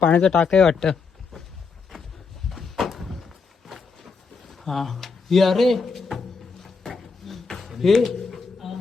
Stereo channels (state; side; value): quieter; right; 4.9 dB